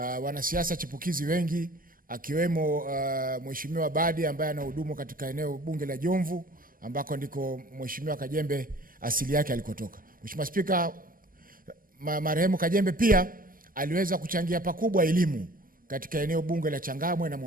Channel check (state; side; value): late; left; 0.41 ms